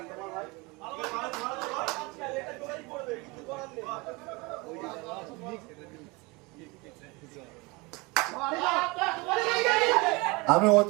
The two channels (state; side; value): quieter; left; 25.9 dB